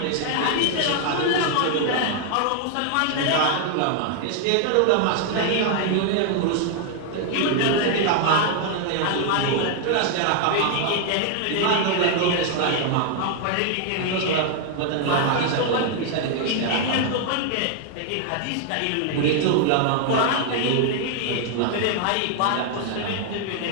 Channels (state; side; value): different; both; correlation 0.00